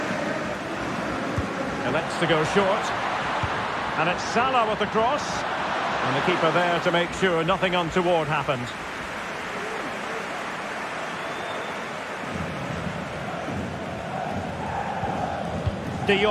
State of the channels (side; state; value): both; identical; correlation 1.00